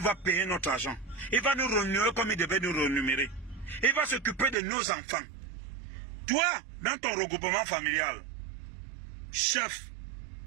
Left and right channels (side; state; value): left; drops out; at 4.5 s